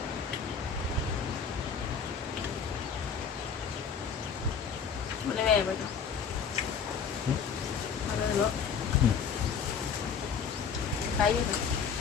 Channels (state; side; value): quieter; right; 6.5 dB